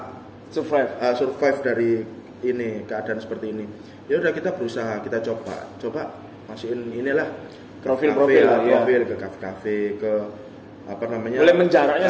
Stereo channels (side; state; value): both; identical; correlation 1.00